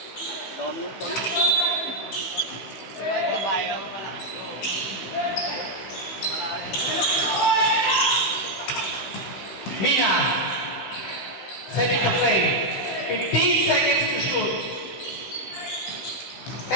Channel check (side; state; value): right; late; 16 ms